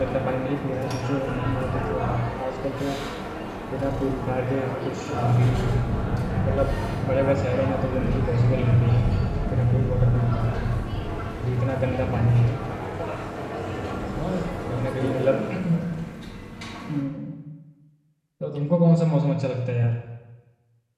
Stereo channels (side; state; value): both; identical; correlation 1.00